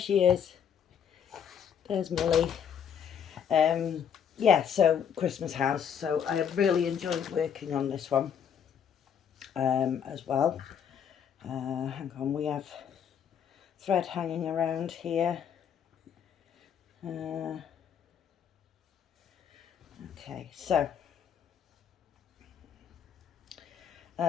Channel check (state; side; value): quieter; right; 8.1 dB